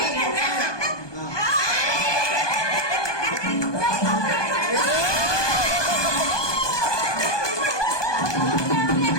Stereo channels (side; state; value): right; late; 1.2 ms